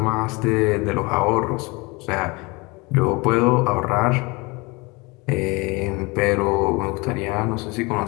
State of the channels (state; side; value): quieter; right; 26.1 dB